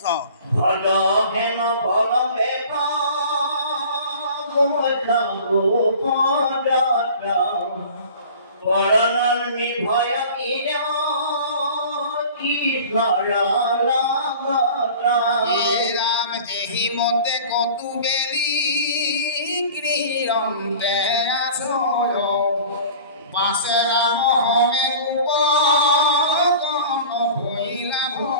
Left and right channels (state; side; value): inverted; both; correlation -0.43